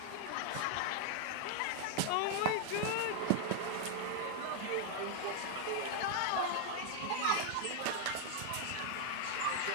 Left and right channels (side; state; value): both; different; correlation 0.00